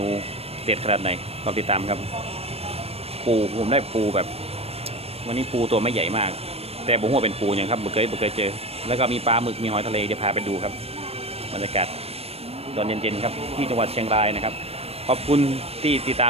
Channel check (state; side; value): late; left; 0.29 ms